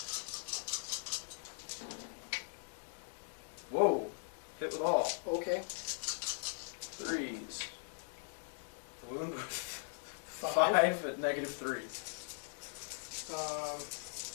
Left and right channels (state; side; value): silent; right; digital silence